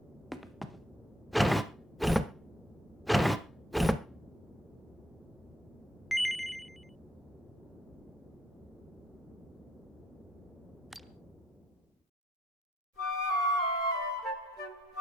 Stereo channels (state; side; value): normal; both; correlation 0.68